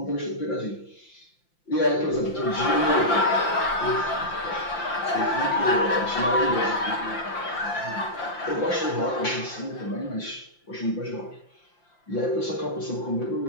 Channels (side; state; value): right; late; 5.8 ms